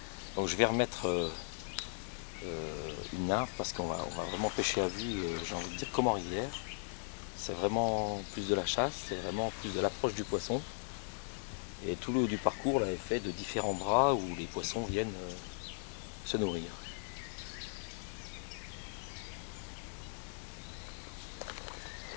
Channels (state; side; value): silent; right; digital silence